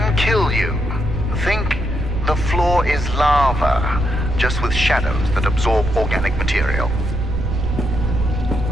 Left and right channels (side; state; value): right; noise; rumble, 6 dB below the sound